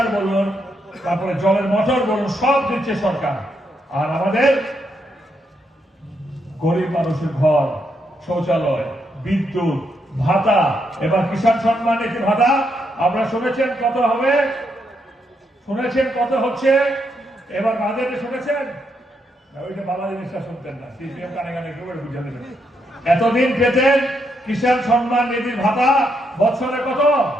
বলুন তারপরে জলের মোটর বলুন সব দিচ্ছে সরকার আর আমাদের গরিব মানুষের ঘর শৌচালয় বিদ্যুৎ ভাতা এবার কিষাণ সম্মান নিধি ভাতা আপনারা শুনেছেন কত হবে শুনেছেন কত হচ্ছে এবার বাজেটে শুনেছেন ওইটা বাংলা জিনিসটা শুনতেন না সিপিএম কানে কানে কেউ বুঝে দেবেন এতদিন পেতেন কিষাণ সম্মান নিধির ভাতা বছরে কত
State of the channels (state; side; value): normal; both; correlation 0.79